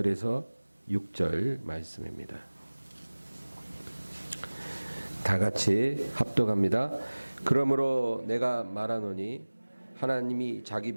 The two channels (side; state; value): both; inverted; correlation -1.00